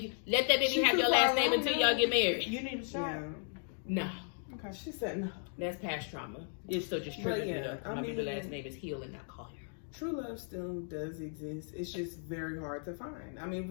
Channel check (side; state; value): right; silent; 54 dB below the other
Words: have your last name until y'all get married. You need a shot. No. Okay. She said no. That's past trauma. It's still just triggering it up. My baby last name is Hill and not Coia. True love still does exist. It's just very hard to find. I mean,